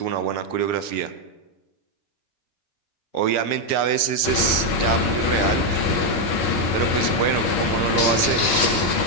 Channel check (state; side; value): late; right; 6.1 ms